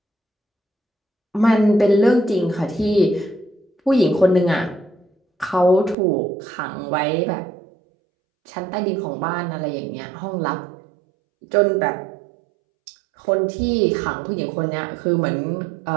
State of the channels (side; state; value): left; drops out; at 6.0 s